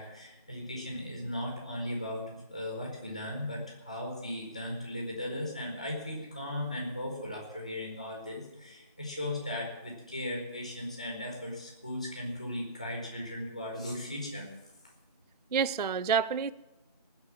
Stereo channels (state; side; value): inverted; both; correlation -0.39